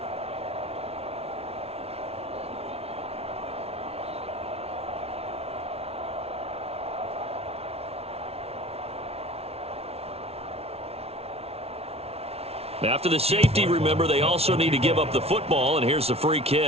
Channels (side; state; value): left; late; 0.30 ms